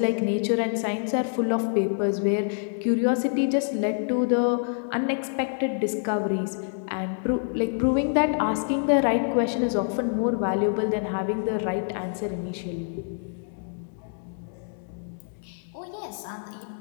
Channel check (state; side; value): silent; right; digital silence